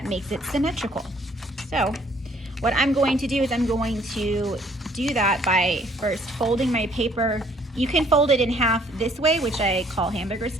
makes it symmetrical. So what I'm going to do is I'm going to do that by first folding my paper. You can fold it in half this way, which I call hamburger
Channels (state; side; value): normal; both; correlation 0.61